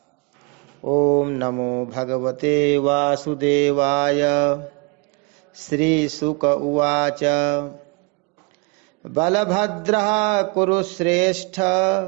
ओम नमो भगवते वासुदेवाय। श्री शुक उवाच। बलभद्रः कुरुश्रेष्ठ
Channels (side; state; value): left; quieter; 31.7 dB